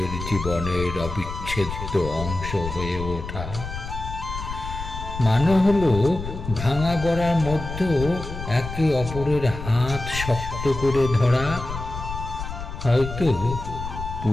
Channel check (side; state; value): left; noise; rumble, 8 dB below the sound